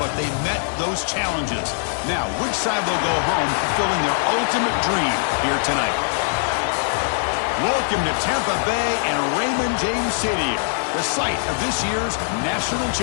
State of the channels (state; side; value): silent; right; 64 dB below the other